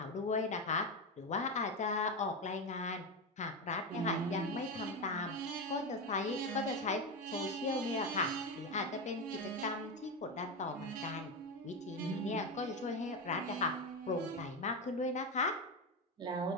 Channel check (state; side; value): normal; both; correlation 0.14